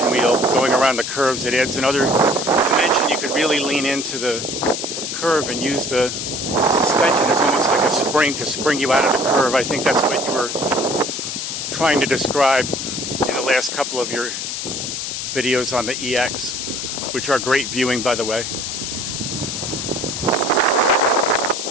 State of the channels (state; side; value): noise; left; hiss, 4 dB below the sound